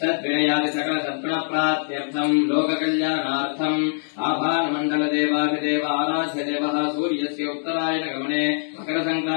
सद्विनयादि सकल सद्गुणप्राप्त्यर्थम् लोककल्याणार्थम् आभारमण्डलदेवाधिदेव आराध्य देवः सूर्यस्य उत्तरायणगमने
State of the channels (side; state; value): right; silent; digital silence